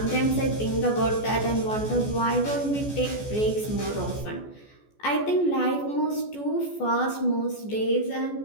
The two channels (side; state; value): right; late; 14 ms